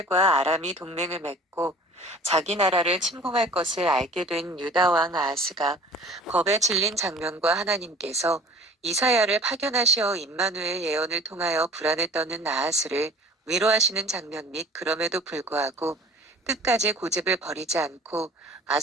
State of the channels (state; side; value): normal; both; correlation 0.46